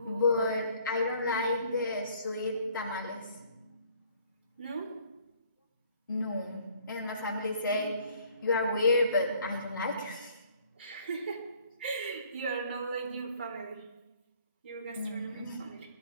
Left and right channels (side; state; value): both; inverted; correlation -0.59